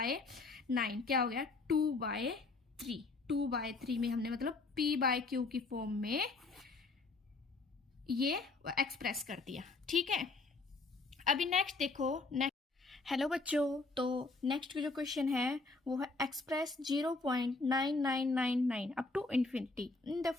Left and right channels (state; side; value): quieter; right; 3.6 dB